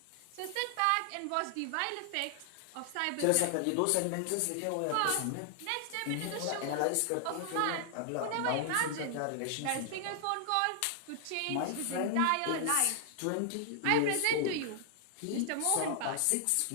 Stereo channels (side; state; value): both; different; correlation 0.00